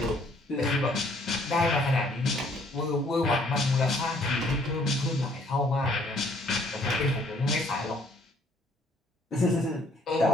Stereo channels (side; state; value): both; normal; correlation 0.63